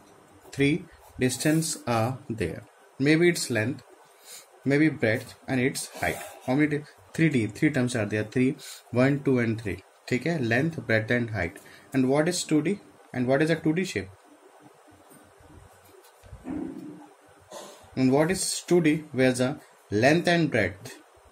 Three distances are there. Maybe its length, maybe breadth and its height. How many? 3D, three terms are there. 3, 1, 2 and 3. ठीक है, length, breadth and height. And what is 2D? And what is a 2D shape? And what is 2D? Where the length and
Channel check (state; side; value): identical; both; correlation 1.00